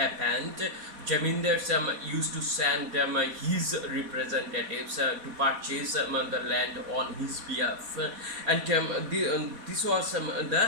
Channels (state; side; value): late; left; 4.1 ms